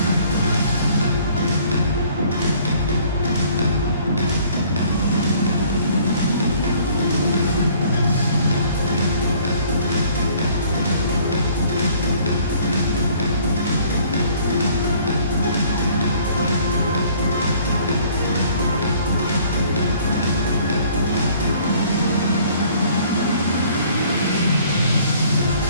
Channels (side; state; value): both; inverted; correlation -0.57